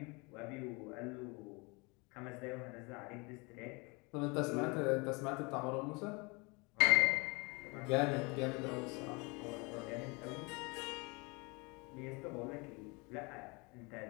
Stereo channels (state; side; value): quieter; right; 28.4 dB